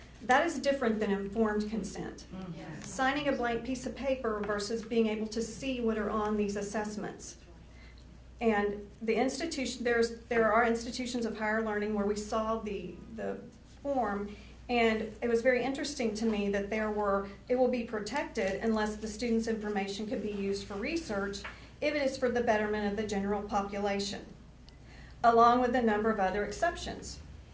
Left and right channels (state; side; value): identical; both; correlation 1.00